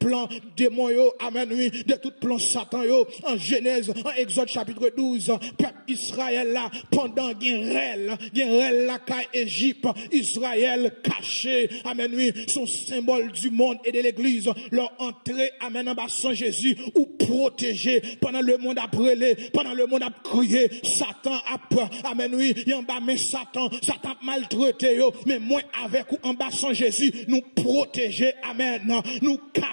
démon yo. Amen. Oui. De tout plan Satan yo. En Genèse. En Exode chapitre 12. Peuple Israël là. Pendant Guerrel la caille Égypte, Israël caché, amen, oui, son symbole du monde et de l'église, leur entrée, amen, en bas sans Jésus, ou protégé, pendant le monde a brûlé, pendant le monde a crié, Satan a, amen, oui, en bas, mais Satan maltraité, yo, mais moi avec ou en bas sans Jésus, nous protéger, amen, nous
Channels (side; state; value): both; inverted; correlation -1.00